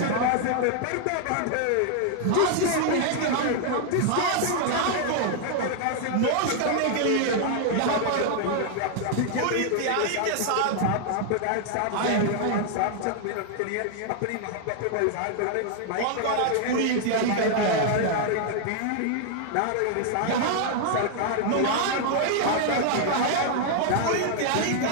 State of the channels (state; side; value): different; both; correlation 0.00